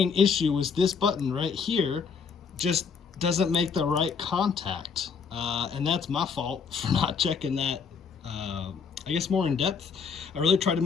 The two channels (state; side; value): quieter; right; 6.0 dB